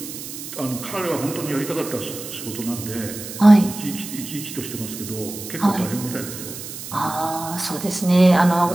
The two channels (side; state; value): right; noise; hiss, 10 dB below the sound